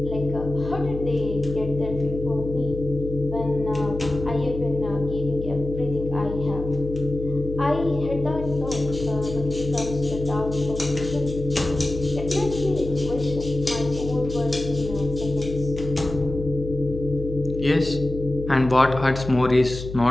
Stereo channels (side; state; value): left; noise; hum, 9 dB below the sound